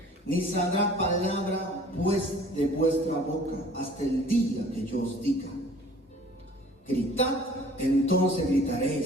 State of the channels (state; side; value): normal; both; correlation 0.51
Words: ni saldrá palabra pues de vuestra boca hasta el día que yo os diga: gritad, entonces